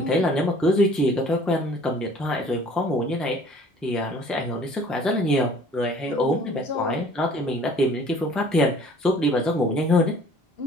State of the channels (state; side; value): normal; both; correlation 0.52